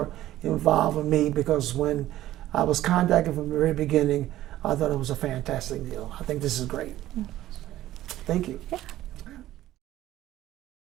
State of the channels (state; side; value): quieter; left; 14.2 dB